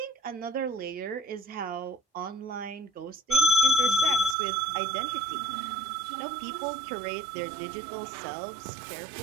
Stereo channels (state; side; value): drops out; left; at 4.4 s